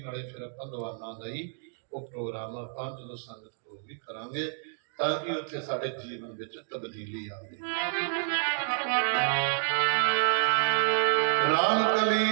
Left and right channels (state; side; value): silent; left; digital silence